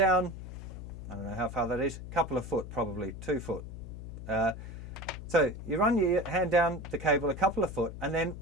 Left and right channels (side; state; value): left; noise; hum, 10 dB below the sound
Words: I don't know how far that is, a couple of foot probably, 2 foot. So you run your hand down the cable a couple of foot, and then